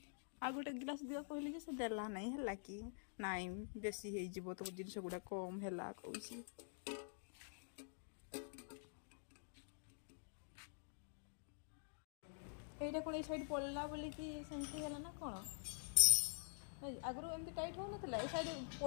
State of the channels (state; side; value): silent; right; digital silence